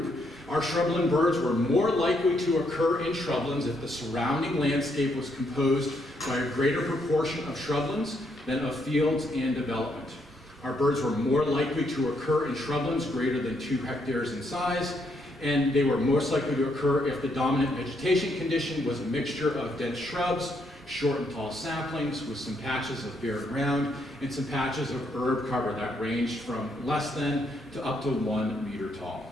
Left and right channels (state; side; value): normal; both; correlation 0.75